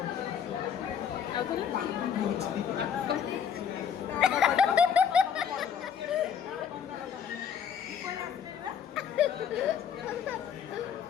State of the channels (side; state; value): right; quieter; 7.8 dB